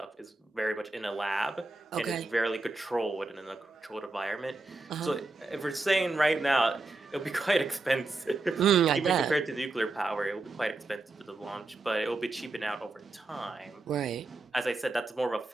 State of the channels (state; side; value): quieter; left; 3.2 dB